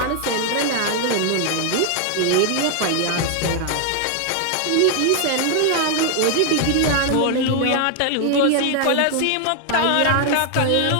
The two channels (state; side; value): different; both; correlation 0.00